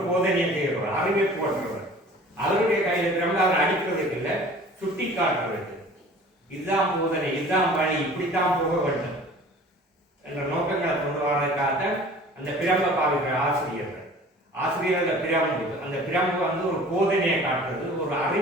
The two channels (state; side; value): normal; both; correlation 0.45